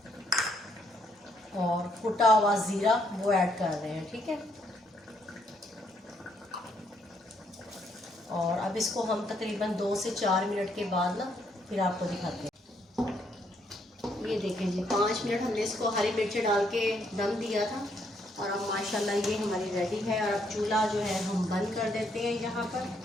और कुटा हुआ ज़ीरा वो ऐड कर रहे हैं, ठीक है। और अब इसको हम तकरीबन 2 से 4 मिनट के बाद ना फिर आपको दिखाते हैं। ये देखें जी 5 मिनट हमने इसको हरी मिर्ची डाल के दम दिया था। और अब माशाल्लाह ये हमारी रेडी है। और अब चूल्हा जो है हम बंद कर देते हैं यहाँ पर।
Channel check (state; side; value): normal; both; correlation 0.72